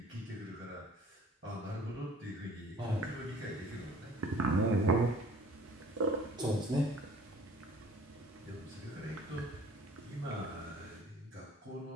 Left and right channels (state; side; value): normal; both; correlation 0.51